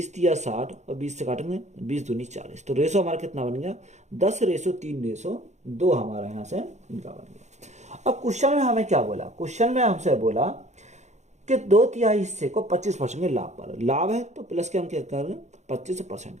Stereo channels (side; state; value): left; late; 0.33 ms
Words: तिया 60 और 20 से काटेंगे 20 दूनी 40। तो रेशो हमारा कितना बन गया? 10:3:2 हमारा यहाँ से इनका बन गया। अब क्वेश्चन में हमें क्या बोला? क्वेश्चन में हमसे बोला कि 2/3 हिस्से को 25% के लाभ पर, लाभ है तो प्लस के हम क्या करेंगे? 25%